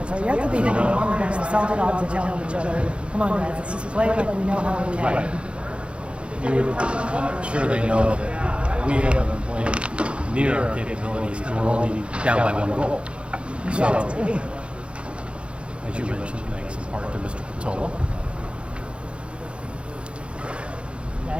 So you have to be thinking on the bench. The Salty Dogs are telling each other, come on guys, let's just play like we know how we can. Right. I'm sure they know that we haven't played near our capabilities and we're only down by 1 goal. So, as you mentioned, thanks in part to Mr. Patola. Yeah, I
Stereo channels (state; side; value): late; left; 0.058 ms